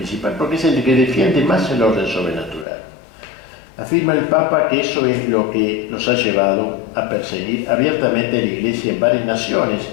porque es el que defiende más el orden sobrenatural. Afirma el Papa que eso es lo que los ha llevado a perseguir abiertamente a la Iglesia en varias naciones,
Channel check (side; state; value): right; drops out; at 2.7 s